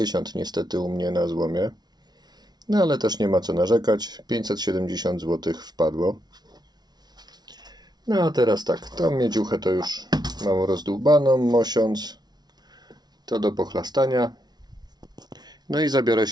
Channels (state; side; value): late; left; 0.19 ms